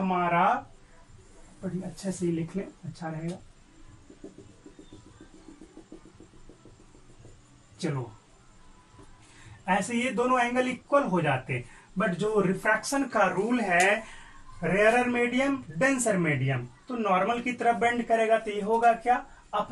बड़ी अच्छे से लिख लें अच्छा रहेगा, चलो ऐसे ये दोनों एंगल इक्वल हो जाते। बट जो रिफ्रैक्शन का रूल है, रेयरर मीडियम डेंसर मीडियम, तो नॉर्मल की तरफ बेंड करेगा तो ये होगा क्या,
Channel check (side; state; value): both; identical; correlation 1.00